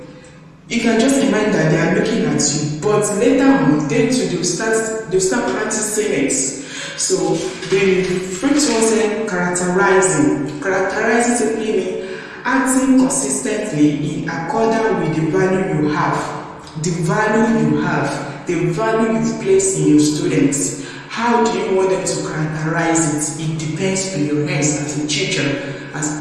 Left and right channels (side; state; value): both; identical; correlation 1.00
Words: You can just imagine that they are looking at you, but later on, they'll start practicing it. So the first one said characterizing. Characterizing simply means acting consistently in accordance with the value you have. The value you've placed in your students. How do you want them to characterize it? It depends on your hands as a teacher, as